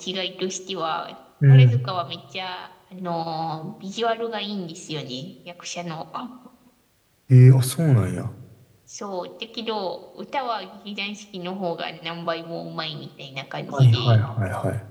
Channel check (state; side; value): identical; both; correlation 1.00